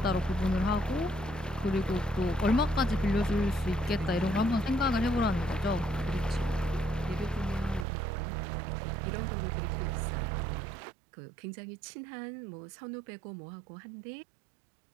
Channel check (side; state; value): left; drops out; at 7.9 s